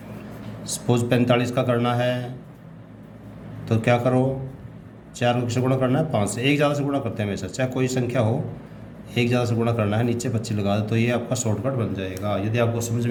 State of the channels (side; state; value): both; identical; correlation 1.00